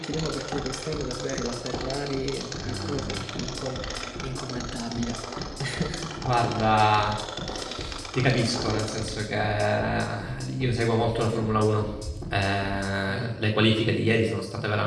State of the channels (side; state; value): both; identical; correlation 1.00